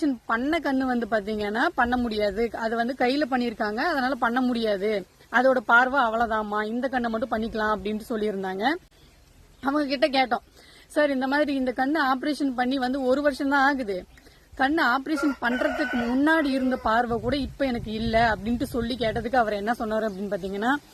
பண்ண கண்ணு வந்து பாத்தீங்கன்னா பண்ண முடியாது, அது வந்து கையில பண்ணிருக்காங்க, அதனால பண்ண முடியாது, அதோட பார்வை அவ்வளவுதாமா, இந்த கண்ணை மட்டும் பண்ணிக்கலாம் அப்படின்னு சொல்லியிருந்தாங்க. அவங்க கிட்ட கேட்டோம், சார் இந்த மாதிரி இந்த கண்ணு ஆபரேஷன் பண்ணி வந்து 1 வருஷம் தான் ஆகுது, கண்ணு ஆபரேஷன் பண்றதுக்கு முன்னாடி இருந்த பார்வை கூட இப்ப எனக்கு இல்ல அப்படின்ட்டு சொல்லி கேட்டதுக்கு அவர் என்ன சொன்னாரு அப்படின்னு பாத்தீங்கன்னா,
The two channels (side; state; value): both; identical; correlation 1.00